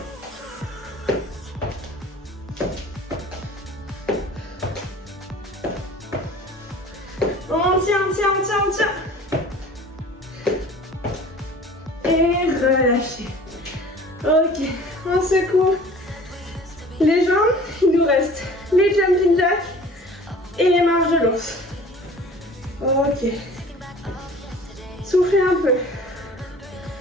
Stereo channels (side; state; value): both; normal; correlation 0.46